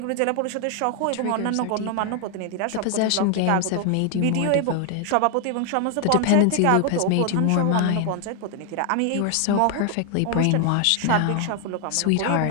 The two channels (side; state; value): both; different; correlation 0.00